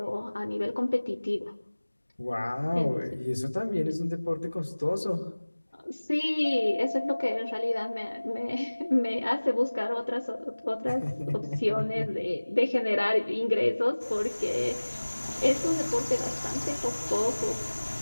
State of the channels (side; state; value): both; inverted; correlation -1.00